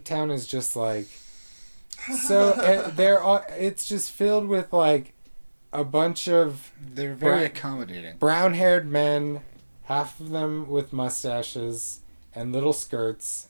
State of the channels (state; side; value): inverted; both; correlation -1.00